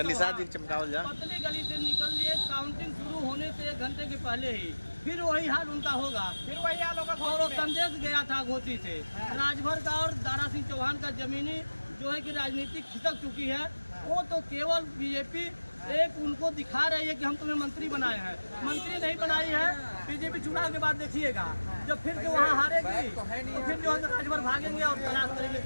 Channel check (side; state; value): both; inverted; correlation -1.00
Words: गली से निकल लिए। काउंटिंग शुरू होने से 1 घंटे के पहले ही फिर वही हाल उनका होगा। फिर वही हाल होगा। और वो संदेश गया था घोसी से। राजभर का और दारा सिंह चौहान का जमीनी जो है कि राजनीतिक खिसक चुकी है। वो तो केवल बीजेपी एक उनको दिखा रही है कि हम तुम्हें मंत्री बनाए हैं। मंत्री नहीं बनाई है। बीजेपी चुनाव के बाद देखिएगा जब फिर से वहाँ हारेगी तो फिर जो है राजभर भागेंगे और तलाश करेंगे